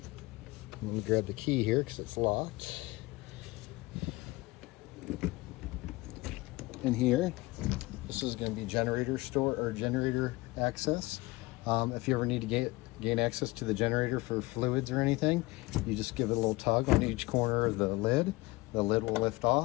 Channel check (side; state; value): right; quieter; 21.8 dB